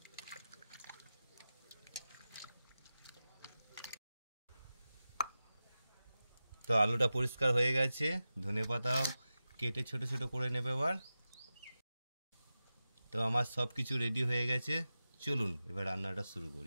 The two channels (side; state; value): both; inverted; correlation -0.94